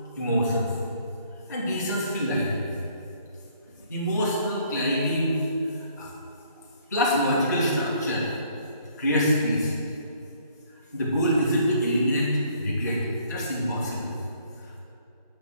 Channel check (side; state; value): both; inverted; correlation -0.62